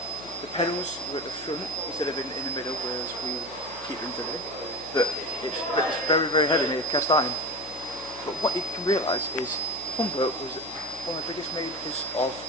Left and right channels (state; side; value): noise; left; hum, 18 dB below the sound